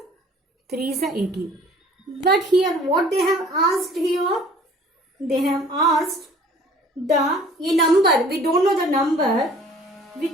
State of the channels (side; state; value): both; normal; correlation 0.51